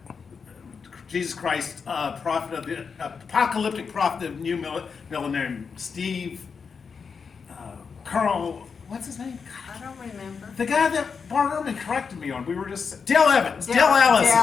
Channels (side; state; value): right; quieter; 5.7 dB